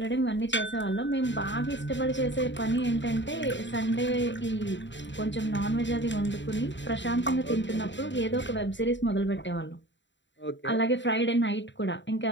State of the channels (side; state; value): right; late; 0.53 ms